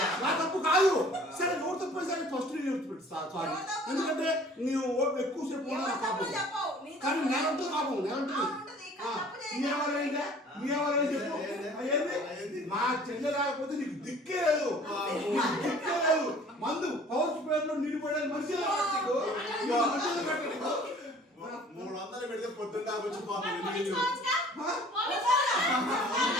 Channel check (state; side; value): normal; both; correlation 0.50